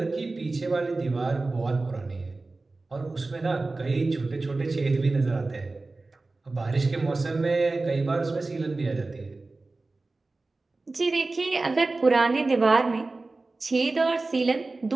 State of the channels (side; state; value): left; quieter; 3.4 dB